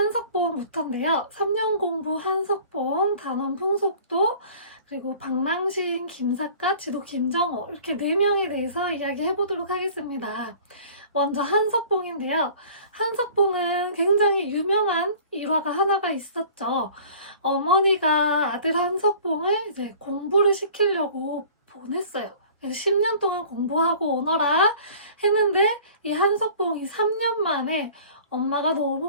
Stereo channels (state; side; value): inverted; both; correlation -0.47